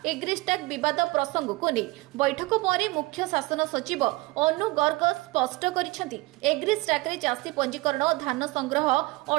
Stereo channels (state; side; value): quieter; left; 22.0 dB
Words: एग्रिस्टाक विवाद प्रसंग को नहीं। बैठक पर मुख्य शासन सचिव अनु गर्ग स्पष्ट करिसेंति एग्रिस्टाक रे चाषी पंजीकरण धान संग्रह